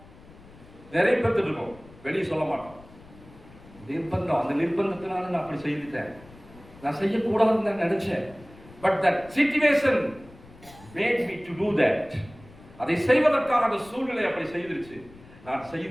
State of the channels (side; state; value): left; noise; rumble, 22 dB below the sound